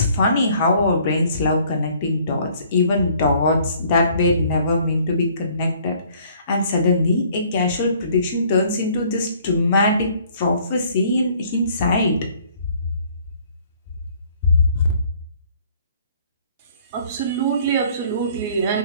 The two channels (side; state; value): both; inverted; correlation -0.58